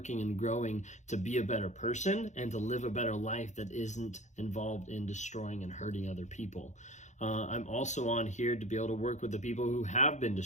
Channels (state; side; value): late; right; 0.34 ms